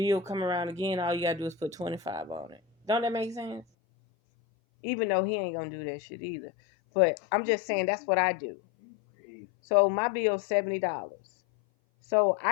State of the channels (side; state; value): right; drops out; at 3.7 s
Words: come around again, all you gotta do is put 25 on it. Don't that make sense? Even though he ain't gonna do that shit either. But I'm just saying that's what I do. So my bill's $70. So